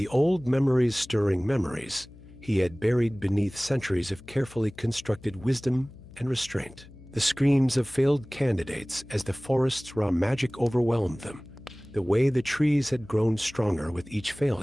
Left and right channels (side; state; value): left; noise; hum, 21 dB below the sound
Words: old memories stirring memories he had buried beneath centuries of carefully constructed wisdom and restraint. The screams of failed candidates as the forest's raw magic overwhelmed them, the way the trees had grown stronger with each